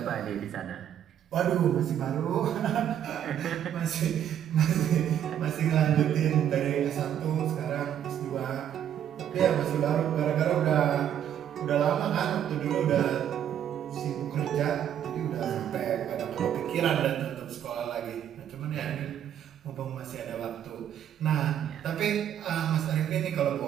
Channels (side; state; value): left; quieter; 10.0 dB